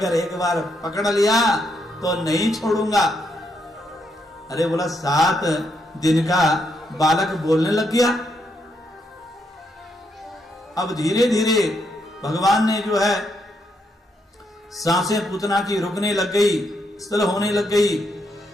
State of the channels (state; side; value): normal; both; correlation 0.78